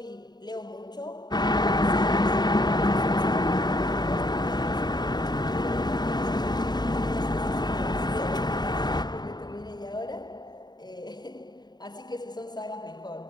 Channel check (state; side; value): late; right; 0.20 ms